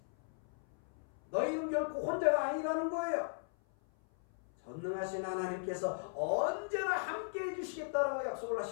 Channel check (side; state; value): right; silent; 53 dB below the other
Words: 너희는 결코 혼자가 아니라는 거예요. 전능하신 하나님께서 언제나 함께 해주시겠다라고 약속을